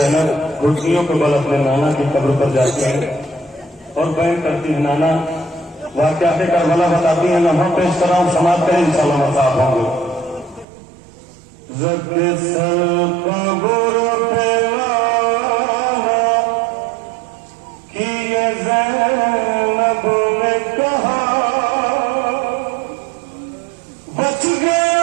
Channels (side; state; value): left; drops out; at 10.7 s